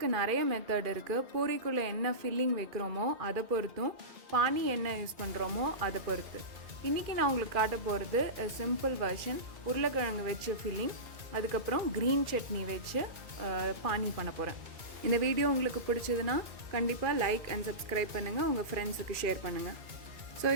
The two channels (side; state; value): left; late; 2.4 ms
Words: நிறைய மெத்தட் இருக்குது. பூரிக்குள்ளே என்ன ஃபில்லிங் வைக்கிறோமோ அதை பொறுத்தும், பானி என்ன யூஸ் பண்ணுறோமோ அதை பொறுத்து. இன்றைக்கி நான் உங்களுக்கு காட்ட போகிறது சிம்பிள் வெர்ஷன். உருளைக்கிழங்கு வச்சு ஃபில்லிங், அதுக்கப்புறம் க்ரீன் சட்னி வச்சு பானி பண்ண போகிறேன். இந்த வீடியோ உங்களுக்கு பிடிச்சதுன்னா கண்டிப்பாக லைக் அண்ட் சப்ஸ்கிரைப் பண்ணுங்கள், உங்கள் ஃப்ரெண்ட்ஸுக்கு ஷேர் பண்ணுங்கள். ஸோ